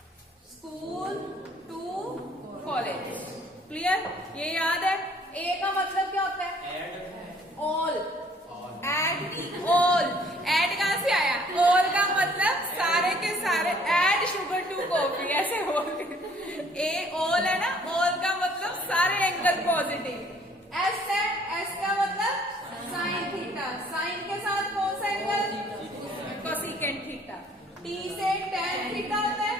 school to college, clear? ये याद है। ए का मतलब क्या होता है? ऑल। एड ऑल, एड कहां से आया? ऑल का मतलब सारे के सारे। एड शुगर टू कॉफी, ऐसे बोल। ए ऑल है ना, ऑल का मतलब सारे एंगल पॉजिटिव। एस है, एस का मतलब साइन थीटा, साइन के साथ कौन सा एंगल? Cosecant theta. टी से टैन थीटा होता है,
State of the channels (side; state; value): both; normal; correlation 0.59